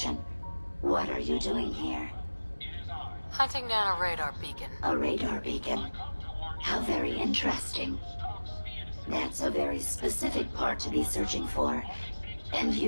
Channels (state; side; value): inverted; both; correlation -1.00